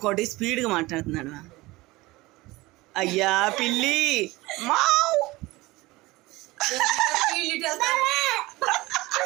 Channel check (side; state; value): left; quieter; 20.6 dB